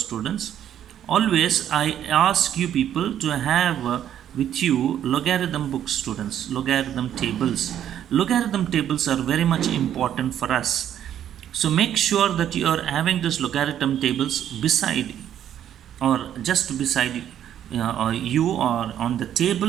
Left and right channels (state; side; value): quieter; left; 10.4 dB